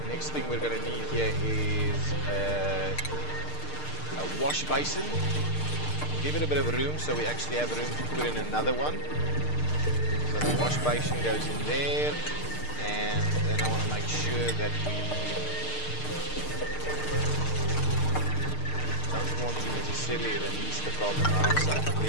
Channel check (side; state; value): right; late; 6.6 ms